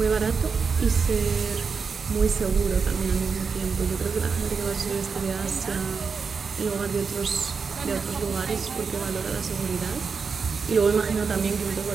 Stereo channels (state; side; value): quieter; left; 5.4 dB